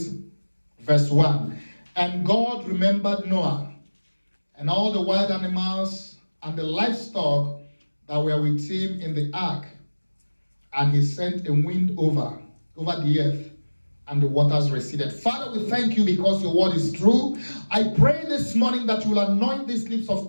verse 1. And God remembered Noah and all the wild animals and the livestock that were with him in the ark. And he sent a wind over the earth, and the waters receded. Father, we thank you because your word is true. I pray this morning that you will anoint these lips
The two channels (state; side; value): inverted; both; correlation -1.00